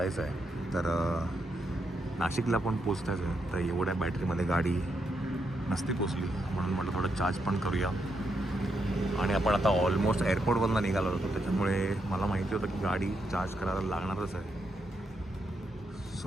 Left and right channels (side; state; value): both; normal; correlation 0.81